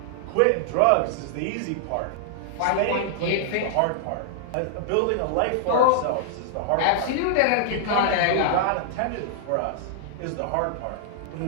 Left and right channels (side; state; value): both; different; correlation -0.01